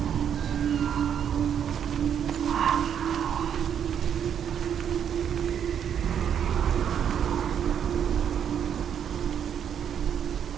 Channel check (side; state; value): left; quieter; 8.6 dB